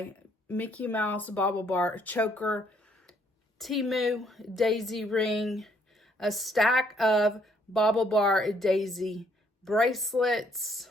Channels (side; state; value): both; normal; correlation 0.67